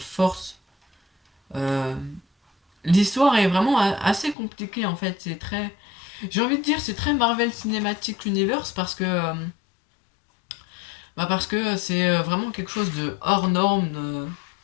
Euh, L'histoire est vraiment assez compliquée en fait. C'est très. J'ai envie de dire, c'est très Marvel Cinematic Universe parce que c'est vraiment quelque chose de hors norme,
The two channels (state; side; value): drops out; right; at 4.4 s